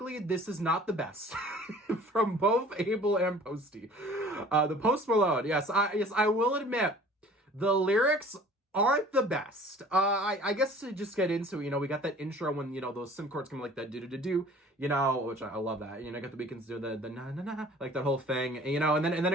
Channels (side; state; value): both; normal; correlation 0.48